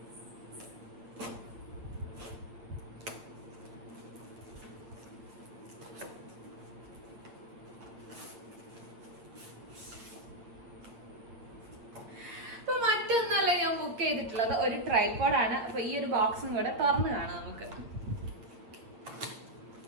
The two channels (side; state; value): left; late; 8.8 ms